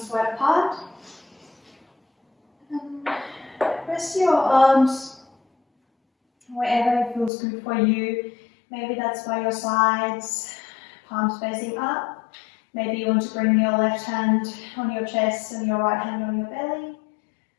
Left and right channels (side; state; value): right; drops out; at 7.3 s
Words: wide apart. Rest your arms wherever it feels good for you. Maybe that's by your sides, palms facing up. Maybe you want to bring your left hand on your chest and your right hand on your belly.